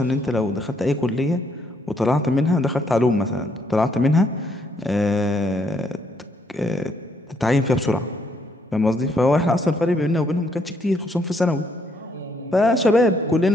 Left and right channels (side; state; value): both; normal; correlation 0.71